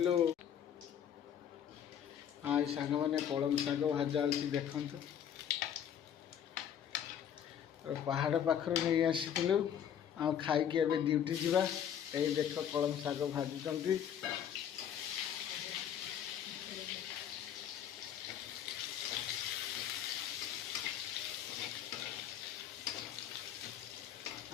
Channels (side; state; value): right; quieter; 9.2 dB